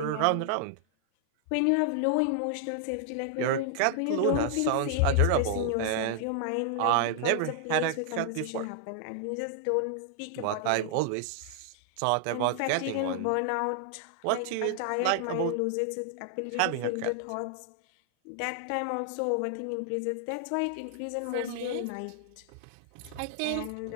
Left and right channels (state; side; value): different; both; correlation 0.00